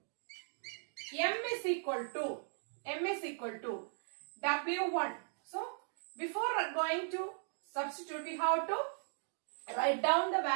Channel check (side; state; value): left; silent; digital silence